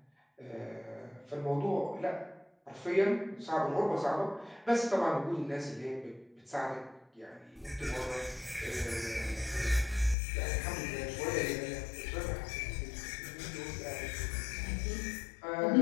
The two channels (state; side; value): drops out; right; at 10.2 s